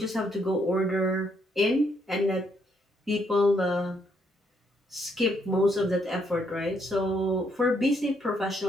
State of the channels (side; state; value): both; normal; correlation 0.73